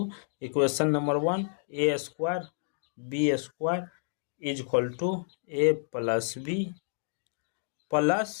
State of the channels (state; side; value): silent; right; digital silence